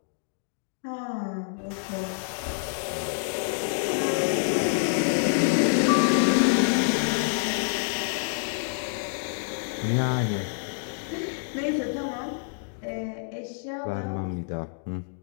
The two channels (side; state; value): right; silent; digital silence